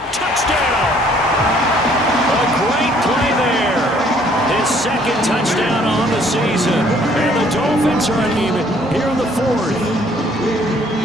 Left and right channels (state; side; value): normal; both; correlation 0.61